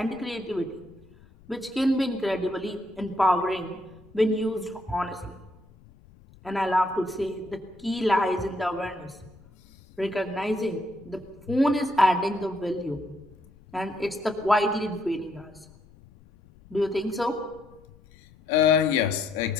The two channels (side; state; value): left; noise; rumble, 25 dB below the sound